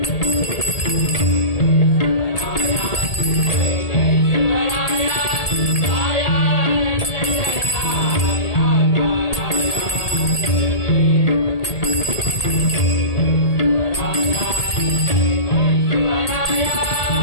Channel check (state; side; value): late; right; 1.8 ms